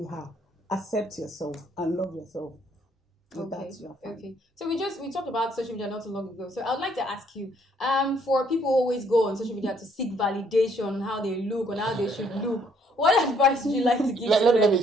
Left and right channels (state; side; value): normal; both; correlation 0.66